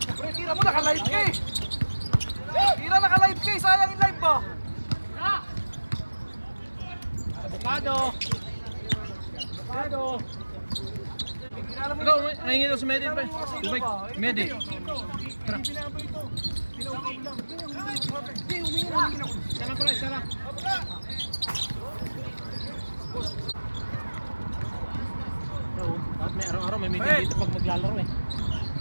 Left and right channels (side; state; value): both; inverted; correlation -1.00